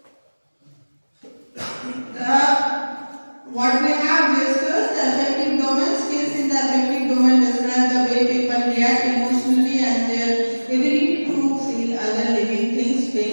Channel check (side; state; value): both; inverted; correlation -1.00